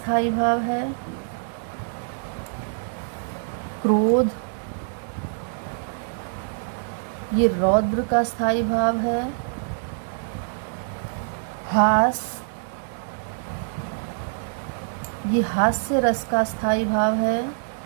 भाव है। क्रोध, ये रौद्र का स्थायी भाव है। हास, ये हास्य रस का स्थायी भाव है।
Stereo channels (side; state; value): left; silent; digital silence